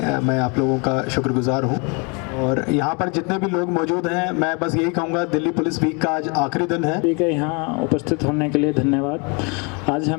मैं आप लोगों का शुक्रगुजार हूं। और यहाँ पर जितने भी लोग मौजूद हैं, मैं बस यही कहूँगा, दिल्ली पुलिस वीक का आज आखिरी दिन है। ठीक है, यहाँ उपस्थित होने के लिए धन्यवाद। आज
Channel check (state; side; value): quieter; right; 32.5 dB